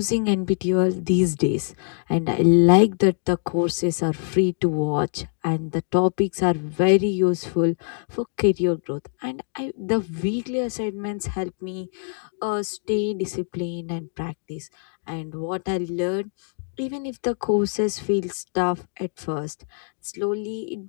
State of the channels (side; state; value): right; silent; 63 dB below the other